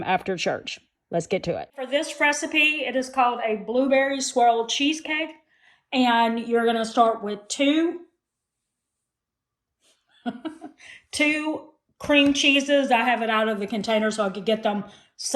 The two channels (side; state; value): both; identical; correlation 1.00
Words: after church. Let's get to it. For this recipe, it is called a blueberry swirl cheesecake, and you're going to start with two cream cheeses. I have it out of the container so I could get them